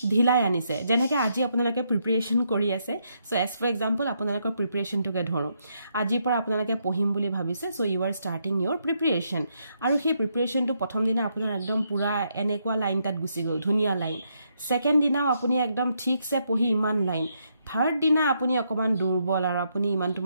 ঢিলাই আনিছে যেনেকৈ আজি আপোনালোকে প্ৰিপাৰেচন কৰি আছে সো এজ ফৰ এক্সাম্পল আপোনালোকৰ প্ৰিপাৰেচনটোকে ধৰো আজিৰ পৰা আপোনালোকে পঢ়িম বুলি ভাবিছে so you are starting your preparation আৰু সেই প্ৰিপাৰেচনটো প্ৰথম দিনা আপোনাৰ একদম পুৰা এনেকুৱা লাইন তাত গুচি গ'ল ধুনীয়া লাইন সেকেন্ড দিনাও আপুনি একদম ঠিকছে পঢ়ি ইমান লাইন থাৰ্ড দিনা আপুনি অকমান দুৰ্বল আৰু আপুনি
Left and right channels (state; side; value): inverted; both; correlation -0.77